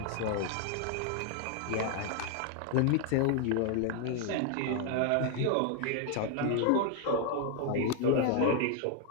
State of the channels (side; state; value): both; different; correlation 0.00